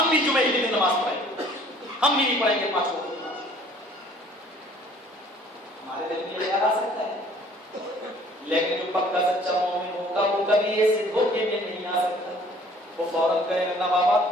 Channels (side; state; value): both; normal; correlation 0.55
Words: بھی جمعے کے دن نماز پڑھیں گے، ہم بھی نہیں پڑھیں گے 5 وقت کی نماز۔ ہمارے دل میں یہ خیال آ سکتا ہے، لیکن جو پکا سچا مومن ہوگا وہ کبھی ایسے دھوکے میں نہیں آ سکتا، وہ فوراً کہے گا نہ بابا